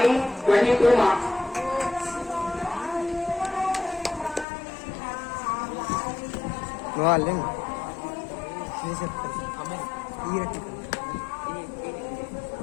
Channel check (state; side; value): drops out; right; at 4.5 s